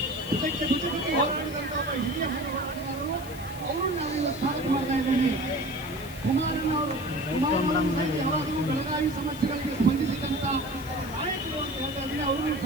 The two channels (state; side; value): noise; left; hiss, 17 dB below the sound